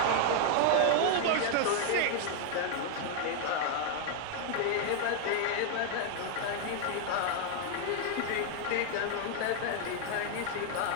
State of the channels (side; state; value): both; different; correlation 0.00